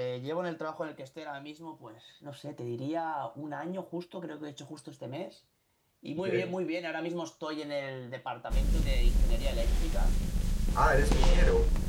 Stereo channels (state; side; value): identical; both; correlation 1.00